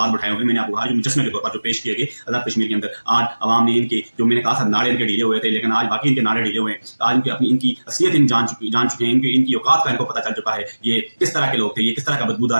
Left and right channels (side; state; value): both; inverted; correlation -1.00